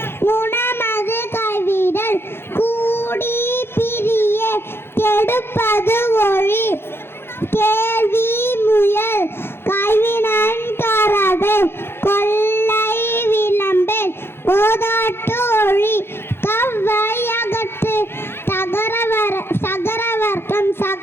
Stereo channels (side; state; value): right; late; 0.11 ms